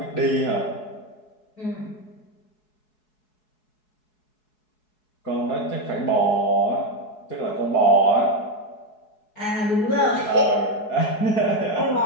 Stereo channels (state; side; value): late; right; 4.7 ms